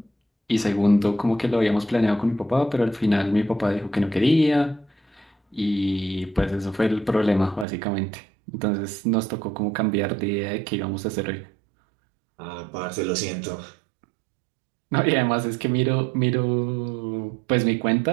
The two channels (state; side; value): drops out; left; at 7.7 s